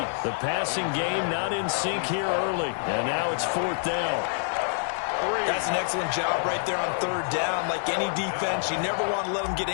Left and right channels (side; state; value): right; silent; digital silence